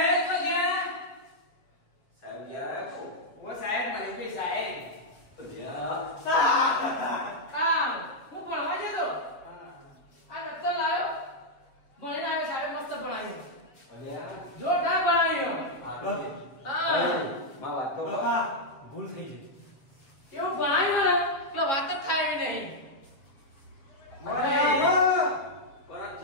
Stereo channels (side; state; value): right; late; 7.4 ms